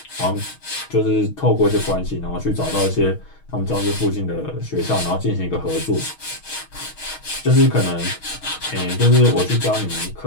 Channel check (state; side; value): late; right; 6.3 ms